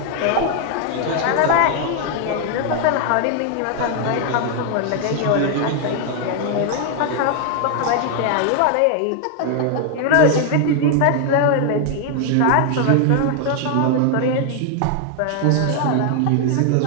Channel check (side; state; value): both; different; correlation 0.00